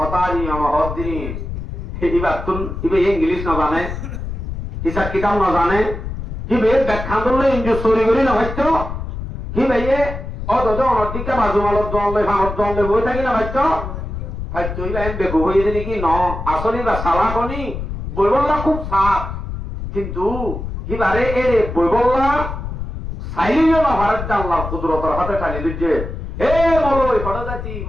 অনর হদ দিন এবার তুন ইবে ইংলিশ না জানে হিসাব কিতাব না জানে হিবে ব্যাখ্যা করলে ইঞ্জু চুরি করি না ভাইতো হিবে অত অনর দিকে বাজু মালত দলে ভাঙত দলে বই থাকি না ভাইতো ভাইতো ইবা এম বেগু হয়ে দিলি কি ন আসলে বা সালাকনি বইবল্লা খুব সাপ কিন্তু হিবারে এরে বইবল্লা সাইলিও না ভারত আল্লাহ কুদরতের হাতে টানি দিচ্ছে হে মলই ফটো যাচ্ছি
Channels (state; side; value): noise; left; rumble, 7 dB below the sound